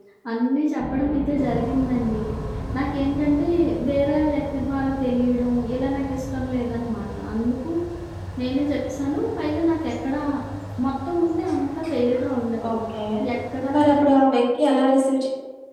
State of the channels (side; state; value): both; identical; correlation 1.00